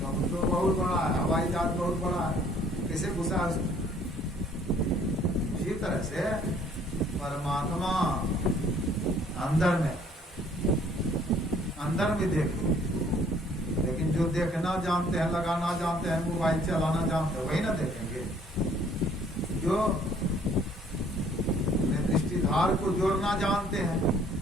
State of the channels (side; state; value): both; normal; correlation 0.59